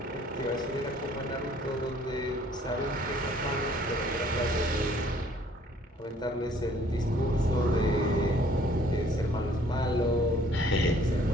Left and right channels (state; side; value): normal; both; correlation 0.59